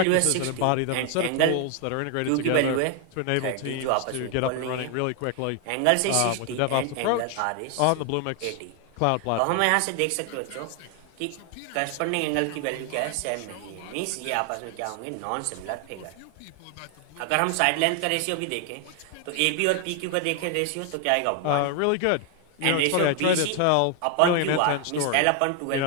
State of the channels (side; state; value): both; different; correlation 0.00